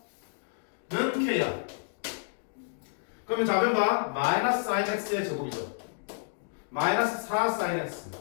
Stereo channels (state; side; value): silent; right; digital silence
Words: 는 k야. 그러면 좌변 봐. 마이너스 사인 x의 제곱이죠. 마이너스 4 사인 x